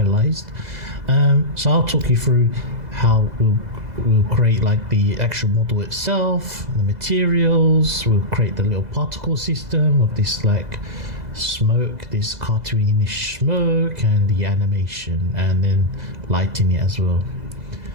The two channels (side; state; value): left; late; 2.0 ms